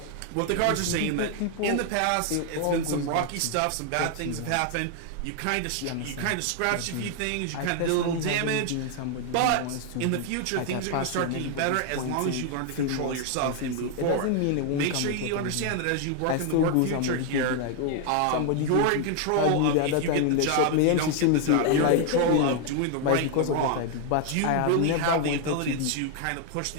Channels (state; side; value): different; both; correlation 0.00